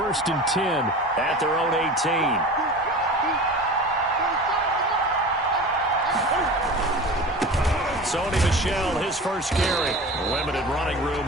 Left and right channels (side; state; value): both; normal; correlation 0.35